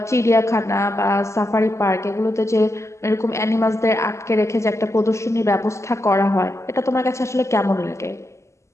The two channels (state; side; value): late; right; 0.14 ms